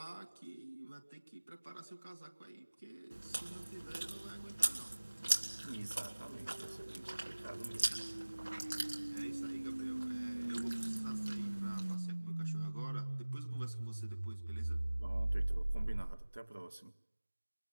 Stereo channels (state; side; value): inverted; both; correlation -1.00